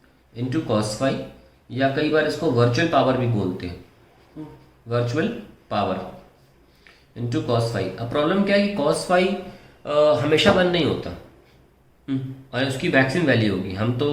into cos phi, या कई बार इसको वर्चुअल पावर भी बोलते हैं, virtual power into cos phi. अब प्रॉब्लम क्या है कि कॉस फाई हमेशा वन नहीं होता, और उसकी मैक्सिमम वैल्यू होगी। हम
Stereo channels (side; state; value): both; identical; correlation 1.00